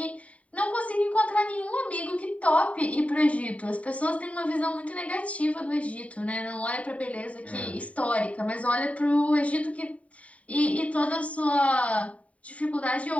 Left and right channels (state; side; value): late; right; 0.067 ms